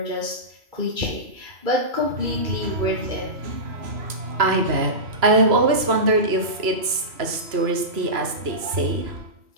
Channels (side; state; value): left; late; 3.0 ms